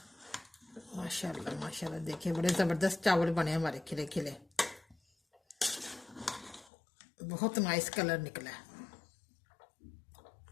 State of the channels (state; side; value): drops out; right; at 6.7 s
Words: माशाल्लाह माशाल्लाह देखिए बड़े ज़बरदस्त चावल बने हमारे, खिले खिले, बहुत नाइस कलर निकला है।